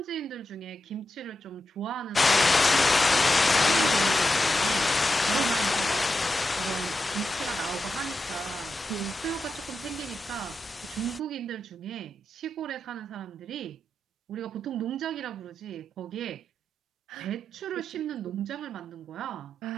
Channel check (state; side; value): normal; both; correlation 0.88